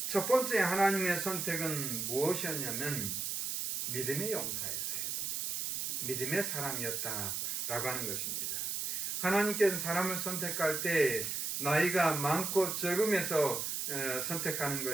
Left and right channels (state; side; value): noise; right; hiss, 1 dB below the sound